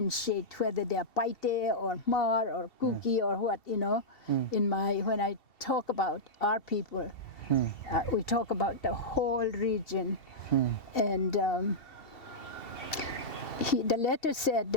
whether they are Paite or Mar or Kuki or what, you know. When I talk about our people, we talk about the whole region. And the letter said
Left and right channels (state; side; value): late; right; 2.7 ms